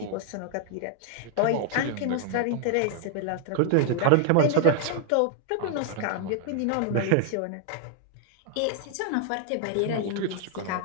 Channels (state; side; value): different; both; correlation 0.00